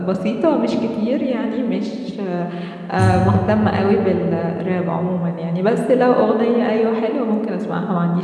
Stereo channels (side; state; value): both; identical; correlation 1.00